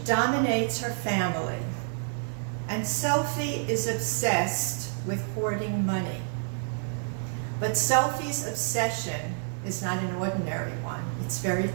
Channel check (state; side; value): silent; left; digital silence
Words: dominates her family, and Sophie is obsessed with hoarding money. But Sophie's obsession is not an ordinary one. It's very